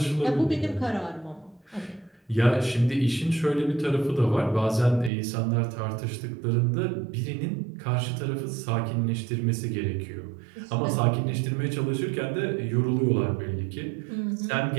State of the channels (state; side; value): drops out; left; at 5.1 s